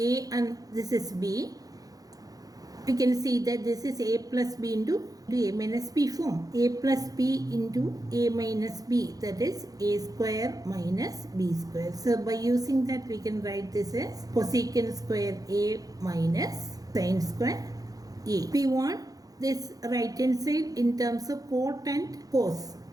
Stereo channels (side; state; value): left; late; 0.18 ms